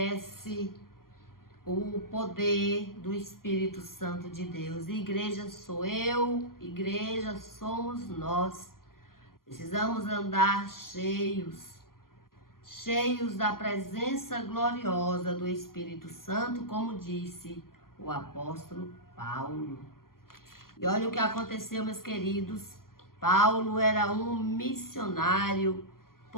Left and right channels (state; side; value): late; right; 0.92 ms